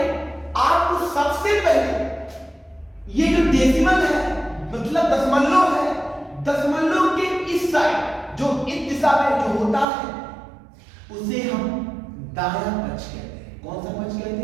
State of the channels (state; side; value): drops out; left; at 9.9 s